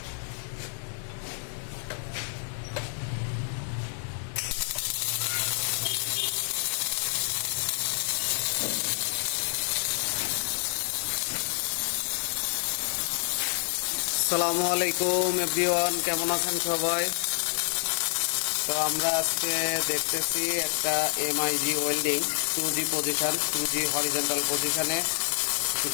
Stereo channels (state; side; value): silent; right; 59 dB below the other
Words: আসসালামু আলাইকুম এভরিওয়ান, কেমন আছেন সবাই? তো আমরা আজকে দেখতেছি একটা MiG welding 2G position, 2G horizontal পজিশনে